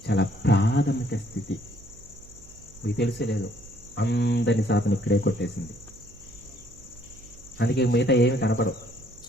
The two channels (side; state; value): right; noise; hum, 23 dB below the sound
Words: చాలా ప్రాథమిక స్థితి. మీకు తెలిసేలేదు, అందరినీ సాతను ఇక్కడే కొట్టేసింది. అందుకే మిగతా ఏమి కనపడవు.